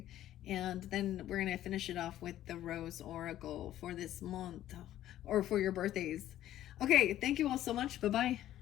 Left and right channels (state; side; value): quieter; right; 12.9 dB